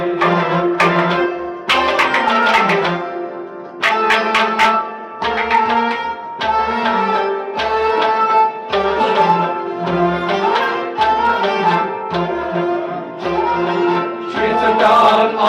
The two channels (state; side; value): identical; both; correlation 1.00